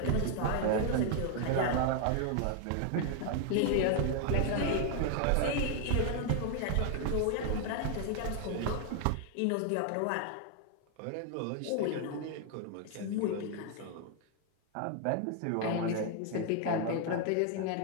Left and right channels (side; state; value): both; different; correlation 0.00